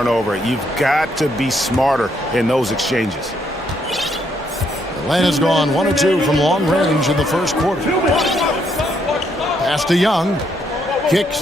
You've got to be smarter in those exchanges. Atlanta's gone 1 of 2 from long range in the first quarter. Pass to Young.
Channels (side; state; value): both; normal; correlation 0.73